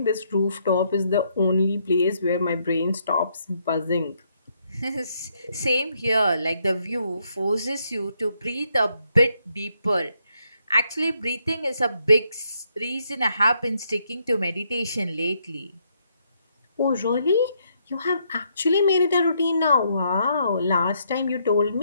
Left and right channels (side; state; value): both; inverted; correlation -0.74